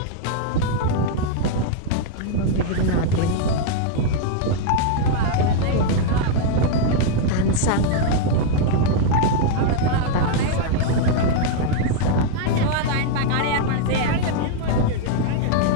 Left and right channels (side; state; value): both; different; correlation 0.00